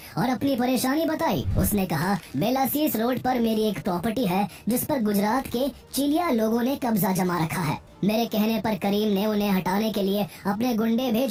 और अपनी परेशानी बताई। उसने कहा, बेलासीस रोड पर मेरी एक प्रॉपर्टी है जिस पर गुजरात के चिलिया लोगों ने कब्जा जमा रखा है। मेरे कहने पर करीम ने उन्हें हटाने के लिए अपने गुंडे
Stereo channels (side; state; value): both; identical; correlation 1.00